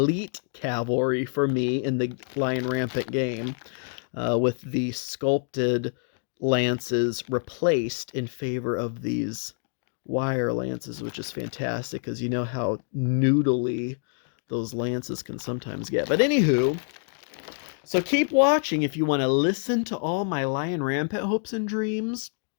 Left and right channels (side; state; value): right; silent; 55 dB below the other